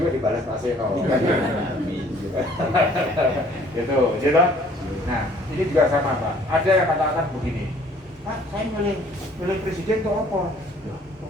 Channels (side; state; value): both; normal; correlation 0.57